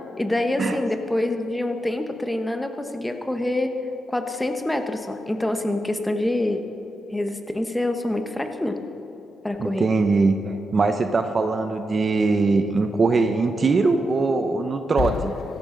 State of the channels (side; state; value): both; normal; correlation 0.87